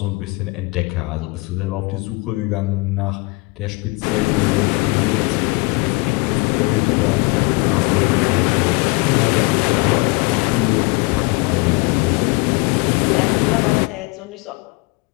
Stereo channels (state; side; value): quieter; right; 25.8 dB